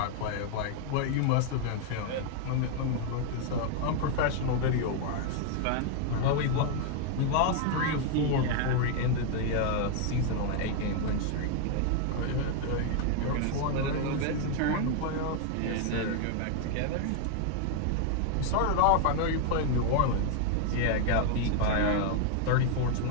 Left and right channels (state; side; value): different; both; correlation 0.00